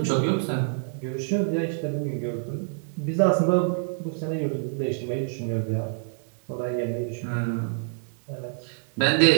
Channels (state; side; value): silent; left; digital silence